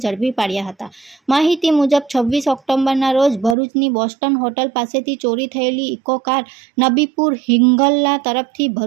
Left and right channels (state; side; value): drops out; left; at 3.6 s